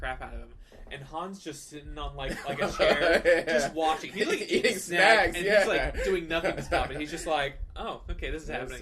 out of him. And Han's just sitting on like a chair, just watching. He's like eating snacks, and he's like doing nothing to stop it. He's just like, oh, okay, this is happening.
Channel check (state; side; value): identical; both; correlation 1.00